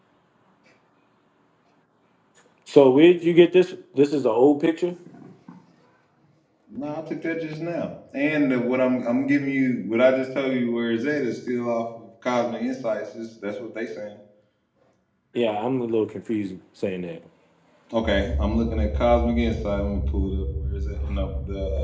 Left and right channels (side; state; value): both; identical; correlation 1.00